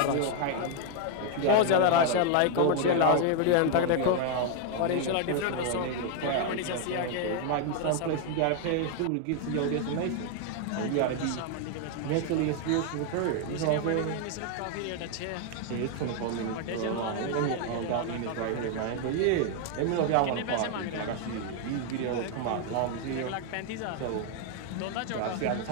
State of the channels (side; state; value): both; different; correlation 0.00